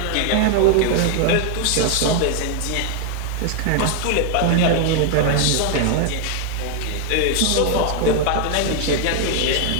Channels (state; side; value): different; both; correlation 0.00